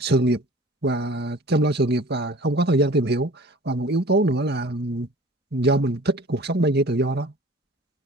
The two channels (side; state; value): both; normal; correlation 0.46